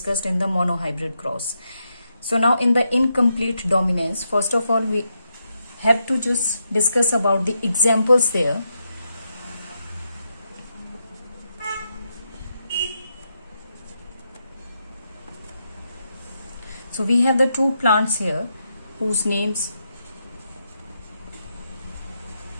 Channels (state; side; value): inverted; both; correlation -0.83